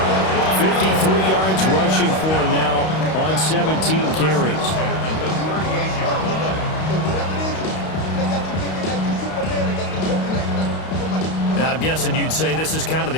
53 yards rushing for him now on 17 carries. Now, I'm guessing you'd say this is kind of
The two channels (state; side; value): late; right; 32 ms